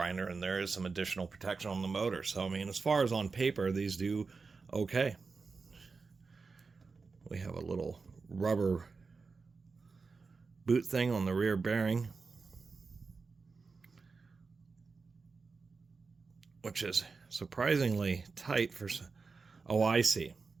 and there is some additional protection on the motor. So, I mean, as far as on paper, these do okay. We have a little rubber boot thing on the rear bearing, which is surprisingly tight for... Oh, I see.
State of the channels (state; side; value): quieter; left; 4.5 dB